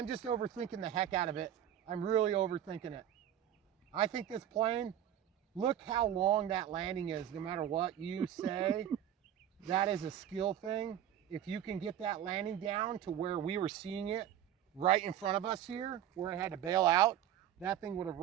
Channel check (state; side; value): quieter; left; 10.9 dB